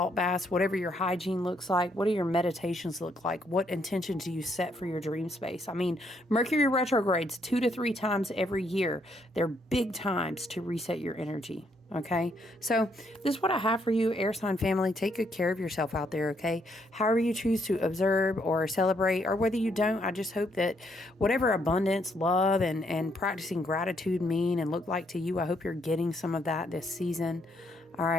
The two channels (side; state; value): both; normal; correlation 0.73